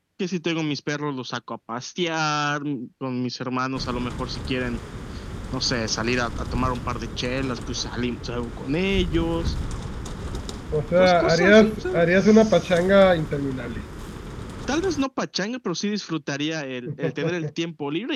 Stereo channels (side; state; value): both; identical; correlation 1.00